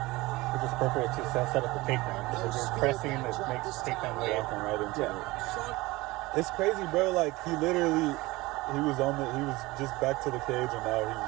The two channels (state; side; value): quieter; left; 20.9 dB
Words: Which is perfect to set up the takedown. Because you're pressing, it makes the takedown way walking right into it. It's crazy, bro. Like he was just back to the cage, and now he's